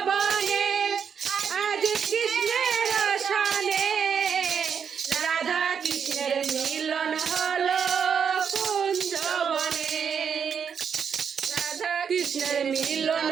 আজ কৃষ্ণের সনে রাধা কৃষ্ণের মিলন হলো কুঞ্জবনে। রাধা কৃষ্ণের মিলন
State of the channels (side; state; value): left; quieter; 7.1 dB